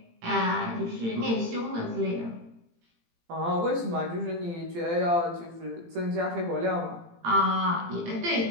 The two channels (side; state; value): left; late; 18 ms